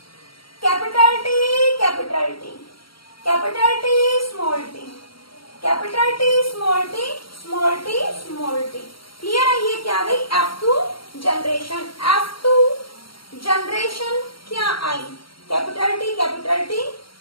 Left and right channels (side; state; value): right; late; 0.74 ms